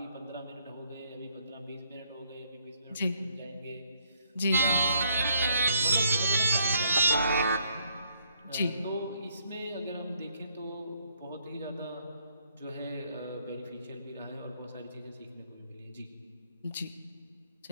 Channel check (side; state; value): both; inverted; correlation -0.70